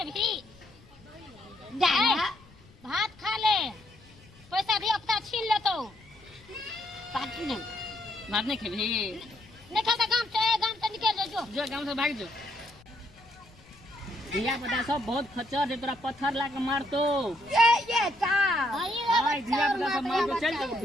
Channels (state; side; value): noise; left; rumble, 25 dB below the sound